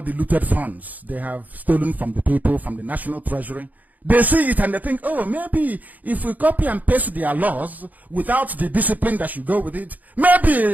the looted funds they have stolen from the people, from the national treasury. They see it and they think, oh, maybe if we copy and paste their laws without the discipline that should go with it,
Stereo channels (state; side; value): late; left; 0.079 ms